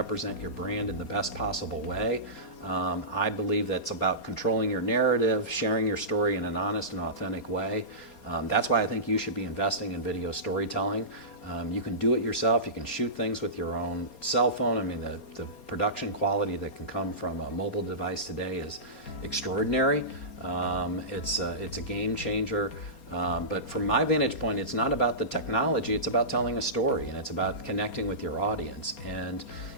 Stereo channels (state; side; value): late; right; 4.3 ms